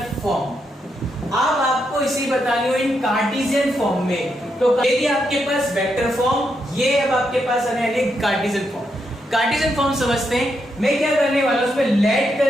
फॉर्म। अब आपको इसे बतानी हो इन कार्टेशियन फॉर्म में, तो यदि आपके पास वेक्टर फॉर्म, ये अब आपके पास आने वाली कार्टेशियन फॉर्म। कार्टेशियन फॉर्म समझते हैं, मैं क्या करने वाला हूं, उसमें लेट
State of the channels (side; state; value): both; normal; correlation 0.81